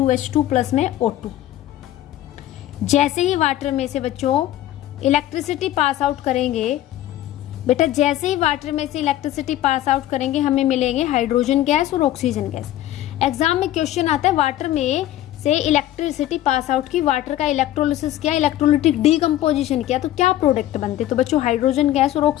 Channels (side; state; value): right; quieter; 13.6 dB